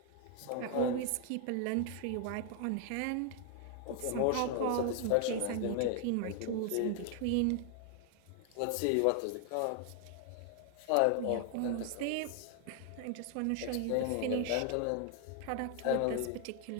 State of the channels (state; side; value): different; both; correlation 0.00